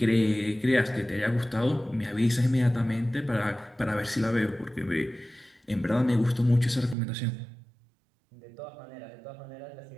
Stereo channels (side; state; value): left; drops out; at 7.0 s